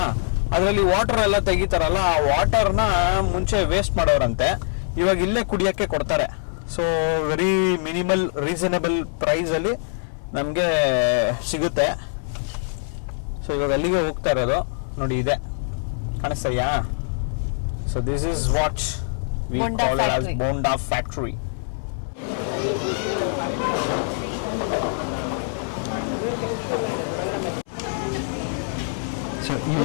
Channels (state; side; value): silent; right; 63 dB below the other